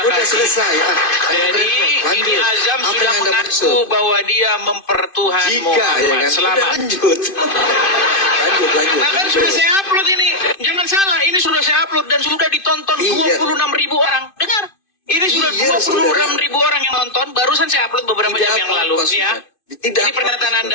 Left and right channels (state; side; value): late; right; 2.5 ms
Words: kasih. selesai. Jadi Lanjut. ini Azam Apa sudah yang Anda mengaku maksud? bahwa dia mempertuhan Jika, ya Muhammad. kan? Selamat. Udah lanjut. lanjut. Nah kan sudah saya upload ini. Jangan salah, ini sudah saya upload dan sudah ditonton Iya. 26.000 orang. Dengar. Ini sudah Iya, 26.000 orang yang nonton. Barusan saya upload beberapa Tidak jam yang lalu. apa-apa, Nih ya. sudah. Tidak Ini pernyataan apa-apa,